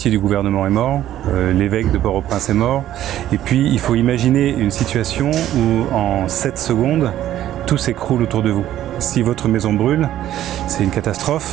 du gouvernement est mort, l'évêque de Port-au-Prince est mort. Et puis il faut imaginer une situation où en 7 secondes, tout s'écroule autour de vous. Si votre maison brûle, c'est une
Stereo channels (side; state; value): left; quieter; 12.5 dB